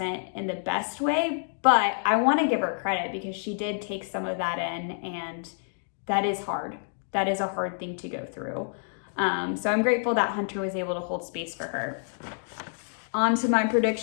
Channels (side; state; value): right; silent; digital silence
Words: in the best way, but I want to give her credit because she did take some of that in, and that is hard. that is a hard thing to go through. So I'm grateful that Hunter was able to hold space for her. On to my